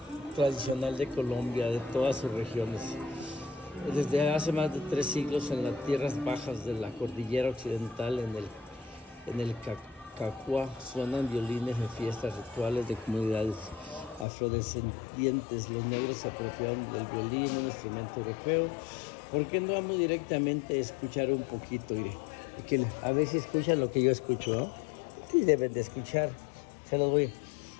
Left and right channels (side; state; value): right; drops out; at 14.2 s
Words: tradicional de Colombia, de todas sus regiones. Desde hace más de 3 siglos en las tierras bajas de la cordillera occidental, en el Cacua, suenan violines en fiestas rituales de comunidades afrodescendientes. Los negros se apropiaron del violín, un instrumento europeo. ¿Por qué no vamos directamente a escuchar un poquito? Iré. A ver si escuchan lo que yo escucho, ¿no? Sí, deben de escuchar. Se los voy.